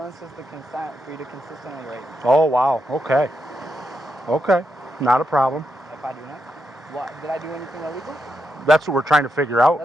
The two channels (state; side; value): normal; both; correlation 0.83